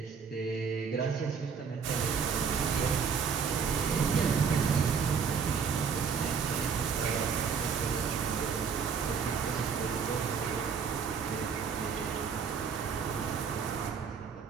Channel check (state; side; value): quieter; left; 6.2 dB